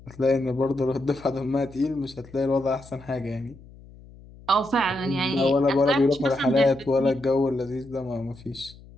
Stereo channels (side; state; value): left; noise; hum, 21 dB below the sound